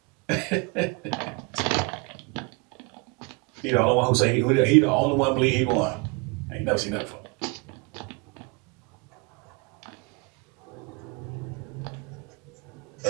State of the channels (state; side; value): quieter; left; 29.0 dB